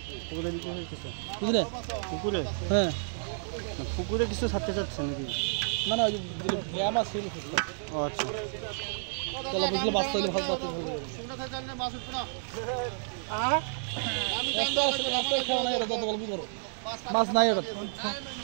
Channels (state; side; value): silent; left; digital silence